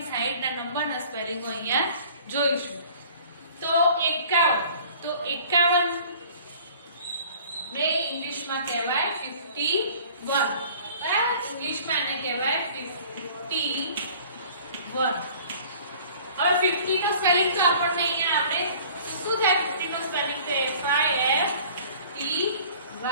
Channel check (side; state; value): both; inverted; correlation -0.49